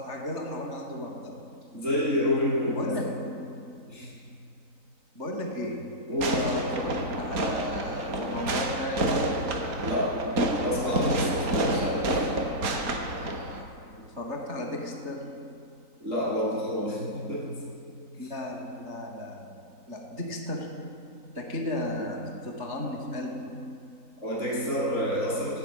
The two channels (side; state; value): left; late; 3.9 ms